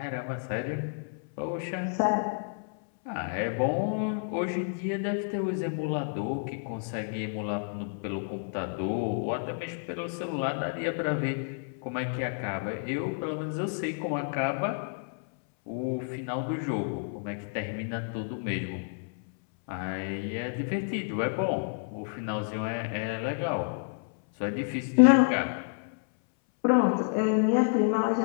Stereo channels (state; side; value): silent; right; 58 dB below the other